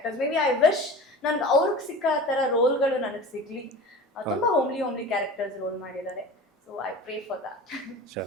ಮೇ ಬಿ ಐ ವಿಶ್ ನನ್ಗೆ ಅವ್ರಿಗೆ ಸಿಕ್ಕ ಆ ಥರ ರೋಲ್ಗಳು ನನಗೆ ಸಿಗ್ಲಿ. ತುಂಬ ಹೋಮ್ಲಿ ಕ್ಯಾರೆಕ್ಟರ್ಸ್ ರೋಲ್ ಮಾಡಿದ್ದಾರೆ. So I pray for that.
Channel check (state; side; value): normal; both; correlation 0.36